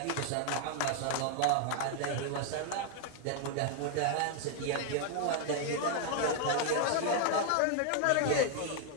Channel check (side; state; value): both; different; correlation 0.00